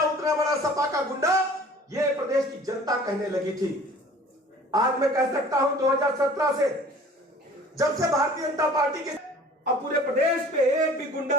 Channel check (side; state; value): both; normal; correlation 0.48